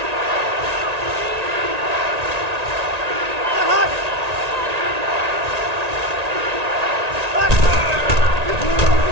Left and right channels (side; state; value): left; late; 1.9 ms